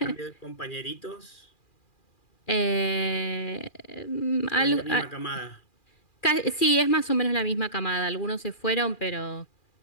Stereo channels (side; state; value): right; late; 2.4 ms